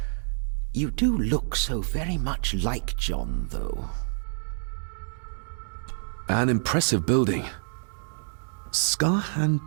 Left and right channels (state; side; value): silent; left; digital silence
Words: You do look so very much like John, though. An impressive building.